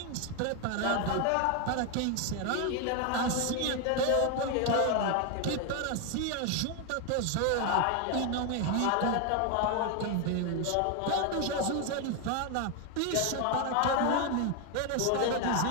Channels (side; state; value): both; different; correlation 0.01